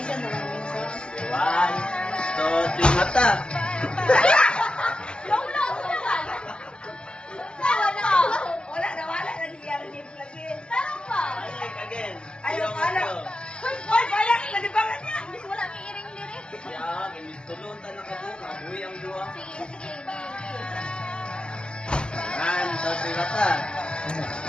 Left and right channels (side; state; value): right; late; 0.053 ms